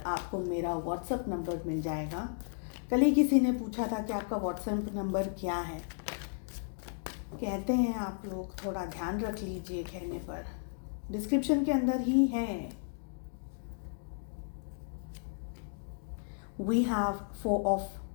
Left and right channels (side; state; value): right; silent; digital silence